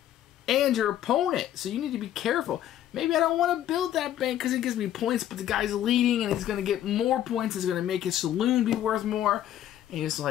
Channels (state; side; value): quieter; right; 11.8 dB